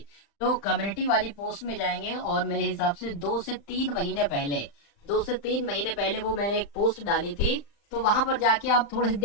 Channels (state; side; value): late; right; 35 ms